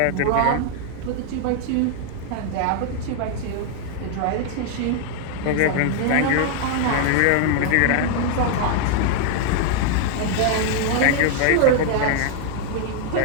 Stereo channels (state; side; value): different; both; correlation 0.00